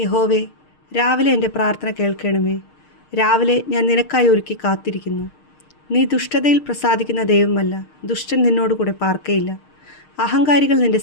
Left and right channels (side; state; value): right; late; 6.5 ms